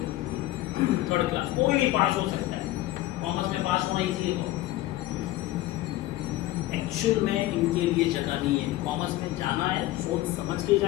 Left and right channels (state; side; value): quieter; right; 16.4 dB